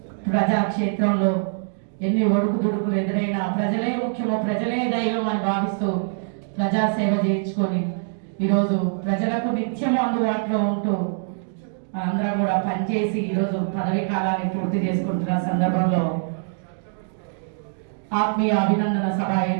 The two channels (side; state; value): left; silent; digital silence